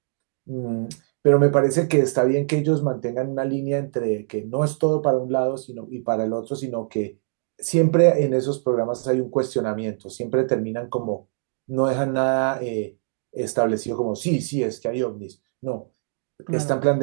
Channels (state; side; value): silent; left; digital silence